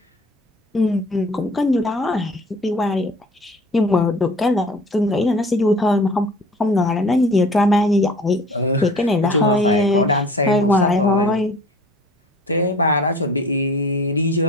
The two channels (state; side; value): normal; both; correlation 0.46